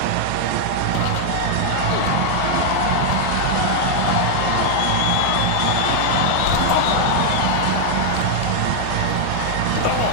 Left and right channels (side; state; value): both; different; correlation 0.00